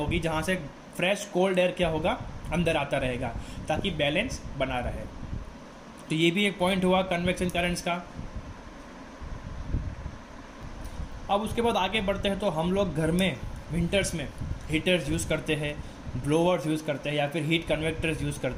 जहाँ से फ्रेश कोल्ड एयर क्या होगा अंदर आता रहेगा, ताकि बैलेंस बना रहे। तो ये भी एक पॉइंट हुआ कन्वेक्शन करंट्स का। अब उसके बाद आगे बढ़ते हैं तो हम लोग घर में विंटर्स में हीटर्स यूज़ करते हैं, ब्लोअर्स यूज़ करते हैं या फिर हीट कन्वेक्टर्स यूज़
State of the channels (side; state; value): both; identical; correlation 1.00